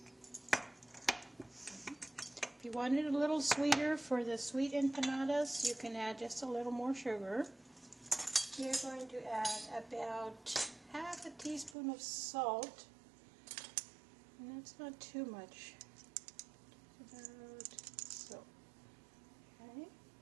If you want it a little sweeter for the sweet empanadas, you can add just a little more sugar. You're going to add about half a teaspoon of salt, and that's not too much. About so. Okay.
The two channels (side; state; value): left; drops out; at 11.8 s